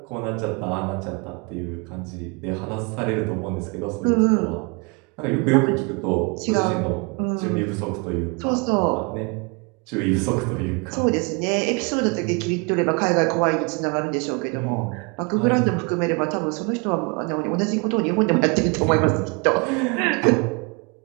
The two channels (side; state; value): left; quieter; 31.5 dB